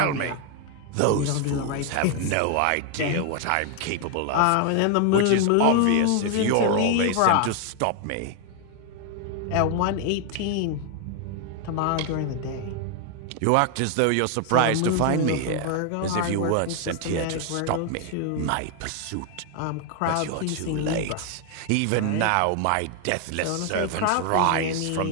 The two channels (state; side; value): different; both; correlation 0.00